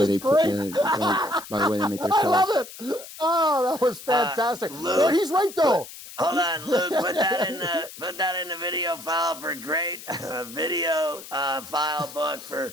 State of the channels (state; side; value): noise; left; hiss, 15 dB below the sound